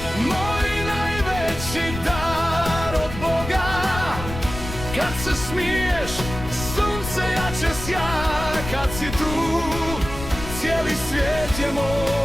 moj najveći dar od Boga. Kad se smiješ, sunce jače sja. Kad si tu, cijeli svijet je moj.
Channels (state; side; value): noise; left; rumble, 9 dB below the sound